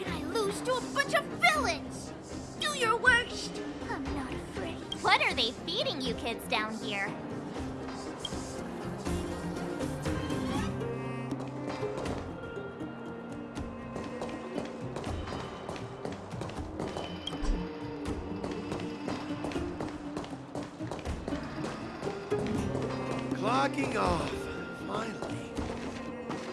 I lose to a bunch of villains? Do your worst! I'm not afraid. What are they feeding you kids down here? Clocking off. Finally.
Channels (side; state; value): both; identical; correlation 1.00